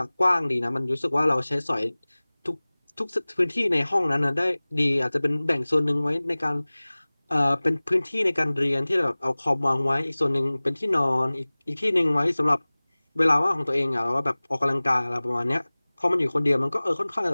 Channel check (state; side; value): inverted; both; correlation -1.00